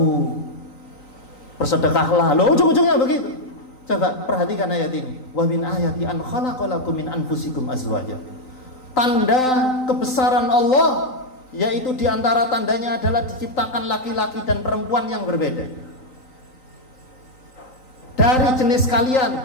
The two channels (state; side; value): late; right; 3.9 ms